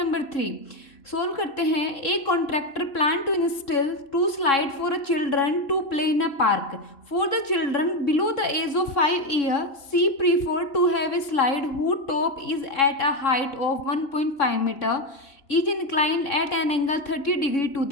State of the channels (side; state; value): right; late; 3.6 ms